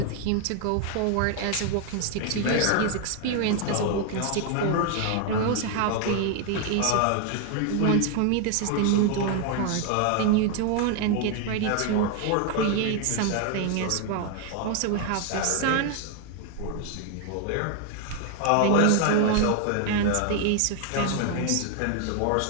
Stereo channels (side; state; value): both; different; correlation 0.00